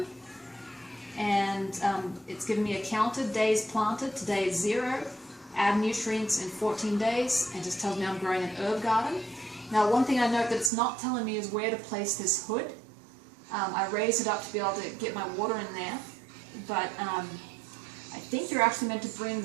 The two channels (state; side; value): drops out; left; at 10.7 s